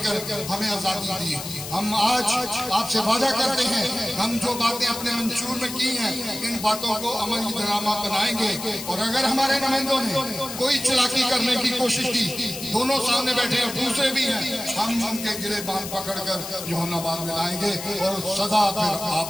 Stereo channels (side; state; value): left; noise; hiss, 9 dB below the sound